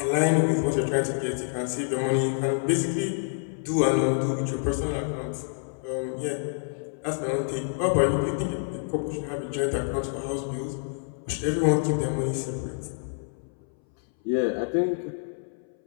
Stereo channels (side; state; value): right; silent; 60 dB below the other